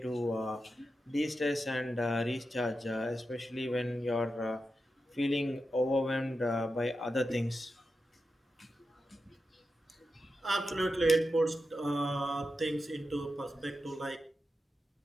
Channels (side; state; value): both; normal; correlation 0.89